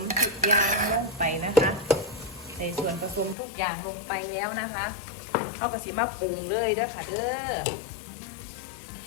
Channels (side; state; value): right; drops out; at 3.4 s